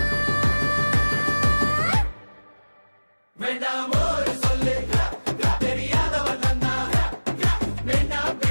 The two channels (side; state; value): both; inverted; correlation -1.00